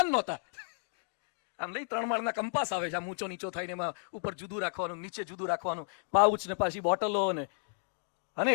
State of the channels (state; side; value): silent; right; 56 dB below the other